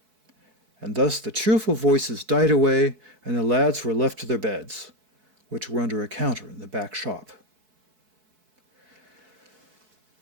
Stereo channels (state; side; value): late; left; 4.6 ms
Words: and thus the cheerful voices died away, and the lads were left to their beds, which were under a counter in the back shop.